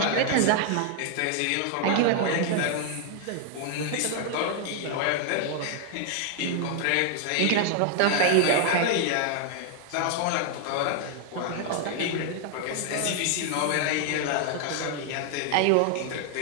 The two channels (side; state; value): both; different; correlation 0.00